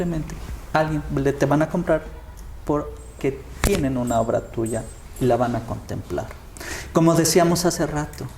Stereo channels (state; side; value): identical; both; correlation 1.00